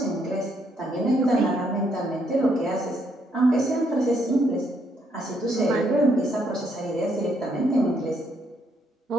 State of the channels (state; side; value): normal; both; correlation 0.73